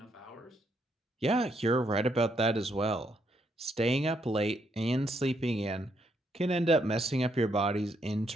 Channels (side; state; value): both; normal; correlation 0.75